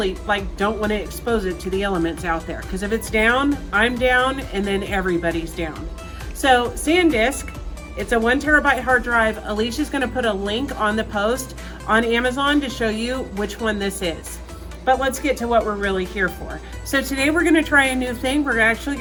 don't want to expose it to the elements out there, because if it's down, I'm down, and then everybody's down. So SanDisk, it's a 1 terabyte hard drive. Alicia's gonna put a link on the post on Amazon to show you which one this is. But let's get to what we're really here for. So today we're gonna try a new thing. We're actually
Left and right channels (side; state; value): both; identical; correlation 1.00